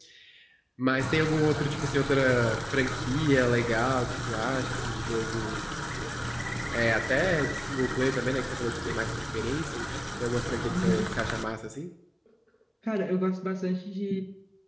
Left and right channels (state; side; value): identical; both; correlation 1.00